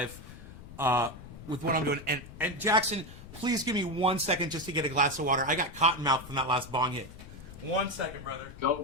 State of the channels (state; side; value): noise; left; rumble, 15 dB below the sound